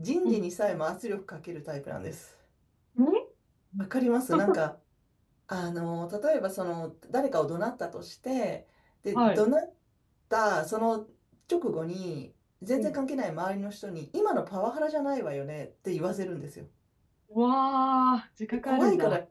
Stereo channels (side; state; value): both; identical; correlation 1.00